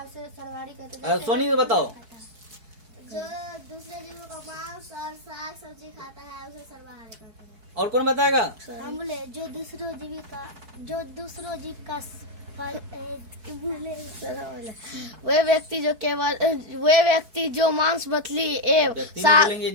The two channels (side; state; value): left; late; 4.7 ms